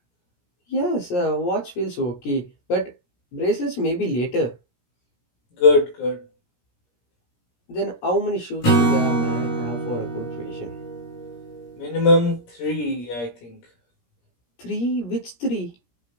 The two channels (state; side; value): late; right; 17 ms